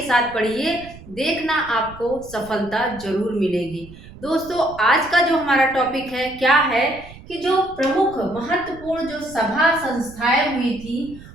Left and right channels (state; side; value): noise; right; rumble, 18 dB below the sound